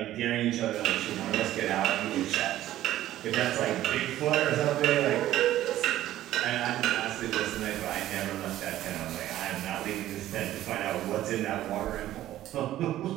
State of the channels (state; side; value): quieter; left; 13.7 dB